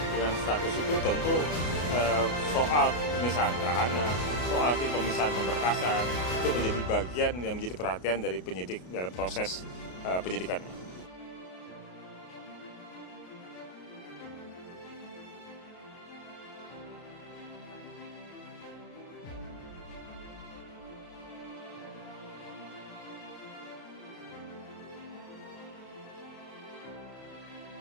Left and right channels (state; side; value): late; right; 33 ms